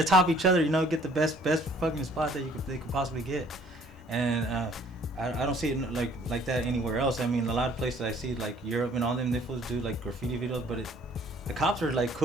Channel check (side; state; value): both; normal; correlation 0.58